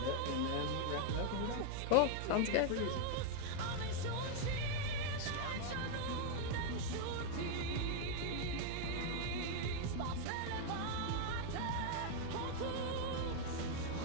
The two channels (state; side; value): different; both; correlation 0.00